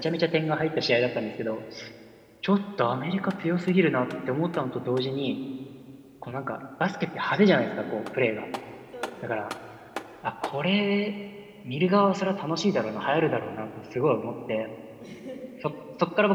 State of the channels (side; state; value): both; identical; correlation 1.00